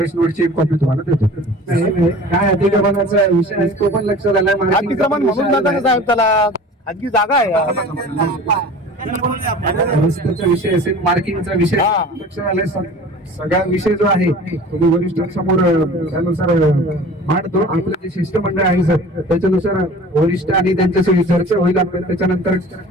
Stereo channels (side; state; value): both; normal; correlation 0.41